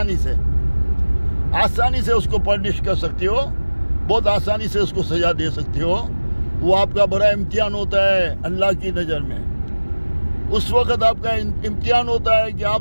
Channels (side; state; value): both; inverted; correlation -1.00